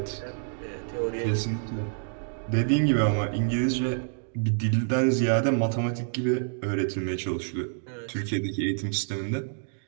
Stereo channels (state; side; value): silent; left; digital silence